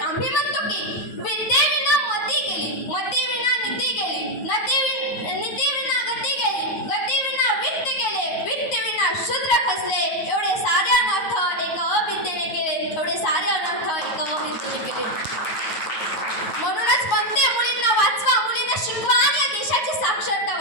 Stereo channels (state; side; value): late; right; 9.5 ms